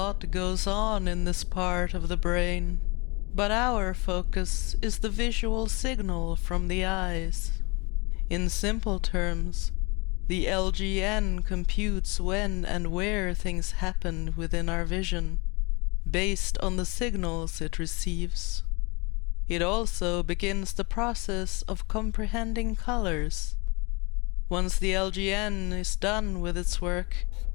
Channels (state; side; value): quieter; right; 27.9 dB